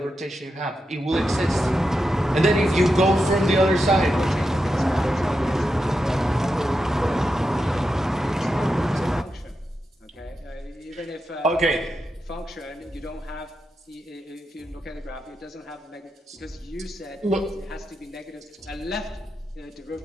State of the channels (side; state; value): both; normal; correlation 0.87